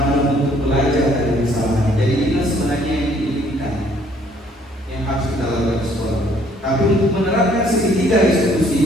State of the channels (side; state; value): both; normal; correlation 0.62